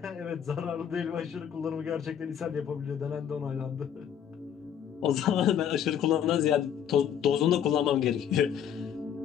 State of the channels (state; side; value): quieter; right; 9.0 dB